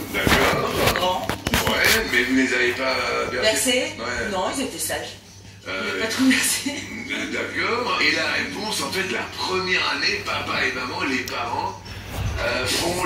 d'accord. Grand. Ouais, mais vous ne les avez pas bercés? Bercé? Ouais. Non, ils étaient sages. Ils Euh, n'avaient pas trop bercé. D'accord. Et la réponse, en fait, la première année, papa et maman, les parents, font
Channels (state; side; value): identical; both; correlation 1.00